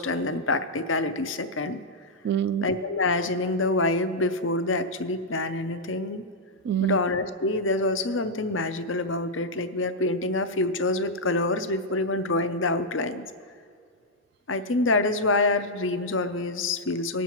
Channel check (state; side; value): normal; both; correlation -0.05